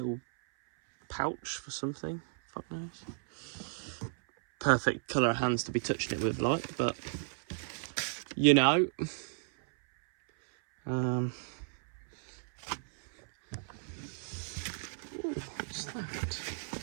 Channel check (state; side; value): silent; left; 55 dB below the other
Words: pouch for something. Fuck knows. Perfect colour of hands to be touching it with, like, but you know. Ooh, what's that?